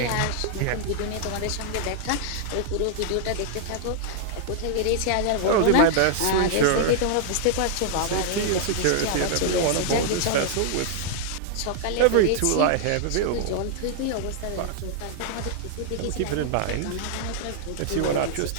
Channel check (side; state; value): both; different; correlation -0.01